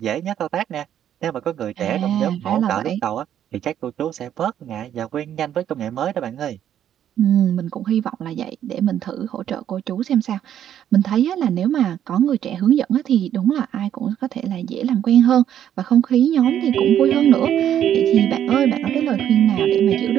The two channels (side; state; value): left; quieter; 10.3 dB